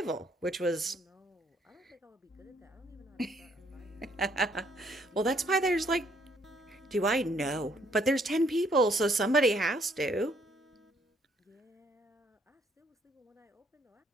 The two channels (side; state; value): both; normal; correlation 0.68